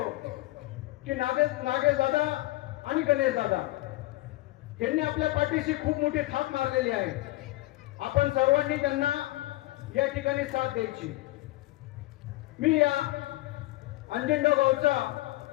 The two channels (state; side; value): quieter; right; 19.0 dB